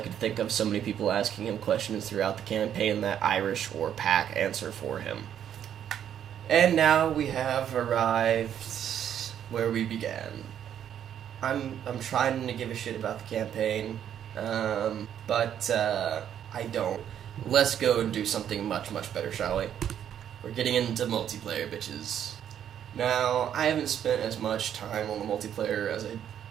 think of so many people asking him questions throughout the campaign that Irish or Pack answer for him. And now we have arrived where we began. I'm trying to give a shit about the campaign, but I don't. Let's go and do something much, much better, shall we? We're getting into multiplayer, bitches. Now, I haven't spent as much time on the multiplayer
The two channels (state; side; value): quieter; left; 9.7 dB